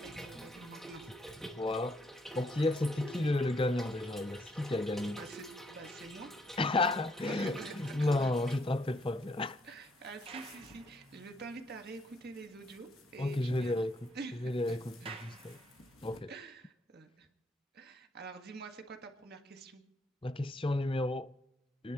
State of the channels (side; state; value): both; normal; correlation 0.71